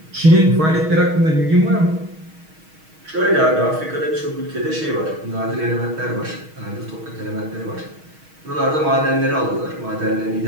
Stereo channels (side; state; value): left; late; 6.3 ms